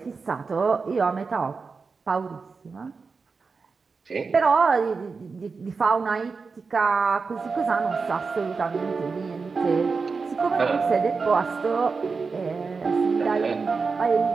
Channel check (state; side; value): quieter; left; 4.7 dB